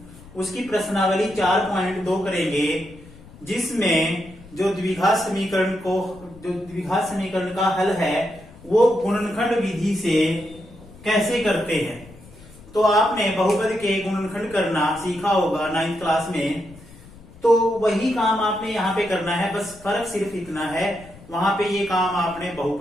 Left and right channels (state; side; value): noise; left; rumble, 21 dB below the sound